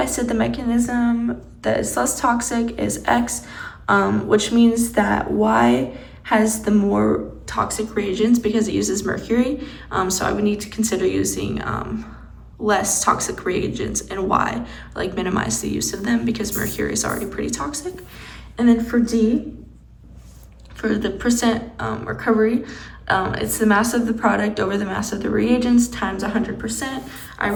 said the mechanism that is less toxic is X, which means that Y has the more toxic reagents because it uses mercury. So I would need to consider using less toxic reagents in Y, like minimize the use of them because mercury is already pretty toxic. And then for D, for the percent recovery, it's the mass of the product over the mass of the reagents times 100%. I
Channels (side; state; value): both; identical; correlation 1.00